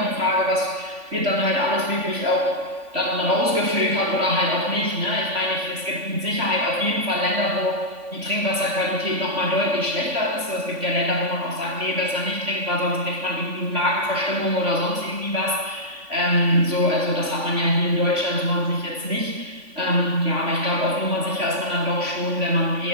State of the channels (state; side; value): late; left; 3.5 ms